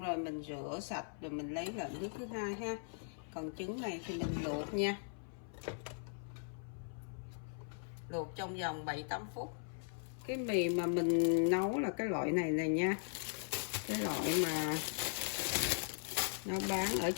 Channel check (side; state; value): right; silent; 52 dB below the other